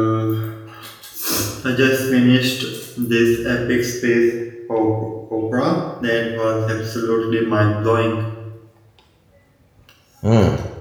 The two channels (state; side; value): identical; both; correlation 1.00